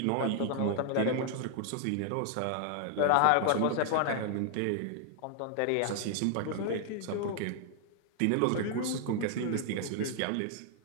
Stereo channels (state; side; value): different; both; correlation 0.00